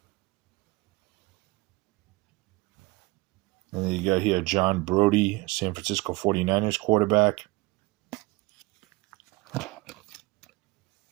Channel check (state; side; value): quieter; left; 22.6 dB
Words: And then you got here John Brody, San Francisco 49ers quarterback.